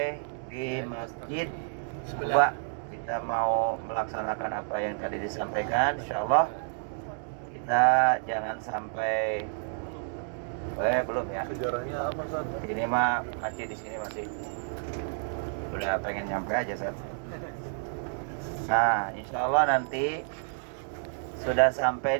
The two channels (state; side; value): silent; left; digital silence